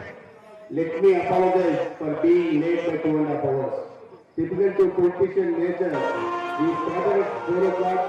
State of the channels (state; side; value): identical; both; correlation 1.00